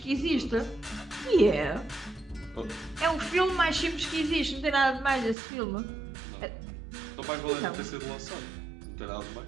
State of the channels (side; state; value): left; drops out; at 5.4 s